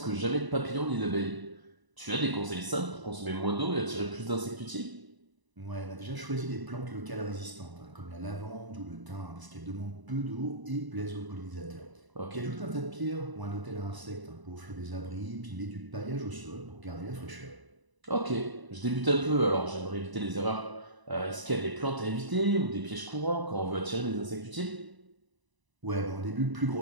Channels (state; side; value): late; left; 1.0 ms